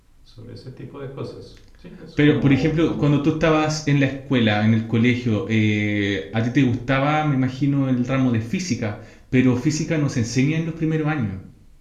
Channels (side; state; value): both; identical; correlation 1.00